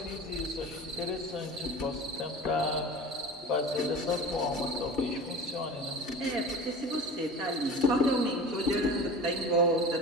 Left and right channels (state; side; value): normal; both; correlation 0.36